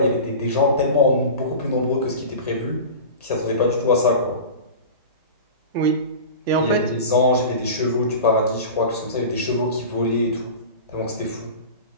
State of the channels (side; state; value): both; inverted; correlation -0.33